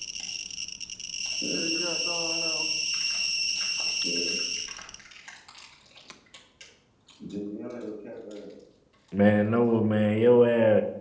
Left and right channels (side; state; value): both; identical; correlation 1.00